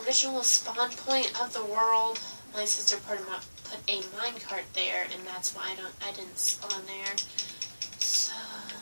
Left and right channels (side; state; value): both; inverted; correlation -1.00